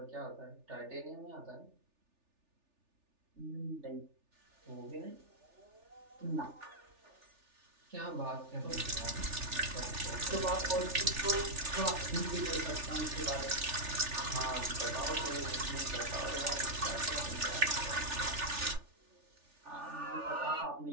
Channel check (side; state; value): left; late; 3.4 ms